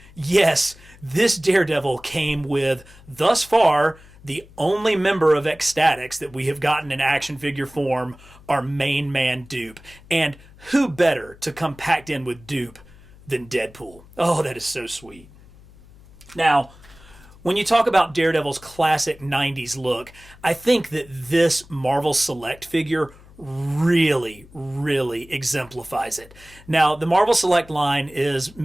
Yes, this Daredevil came with, thus far, the only member of Ecstatics that we have gotten in action figure form, our main man Dupe. And who better to come packed in with Dupe than Deadpool? Oh, that is so sweet. Now, when you talk about Daredevil's classic 90s look, I think that this Marvel Select figure really, really exemplifies it. Now, the Marvel Select line is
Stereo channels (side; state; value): left; noise; hum, 23 dB below the sound